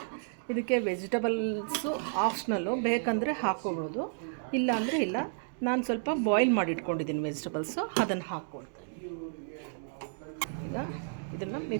ಇದಕ್ಕೆ ವೆಜಿಟಬಲ್ಸು ಆಪ್ಷನಲ್ಲು, ಬೇಕಂದರೆ ಹಾಕ್ಕೊಬೋದು, ಇಲ್ಲ ಅಂದರೆ ಇಲ್ಲ. ನಾನು ಸ್ವಲ್ಪ ಬಾಯ್ಲ್ ಮಾಡಿ ಇಟ್ಕೊಂಡಿದ್ದೀನಿ ವೆಜಿಟಬಲ್ಸು, ಅದನ್ನು ಹಾಕ್ಕೊಳ್ತಾ ಇದ್ದೀನಿ. ಈಗ ಇದನ್ನು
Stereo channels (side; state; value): left; silent; digital silence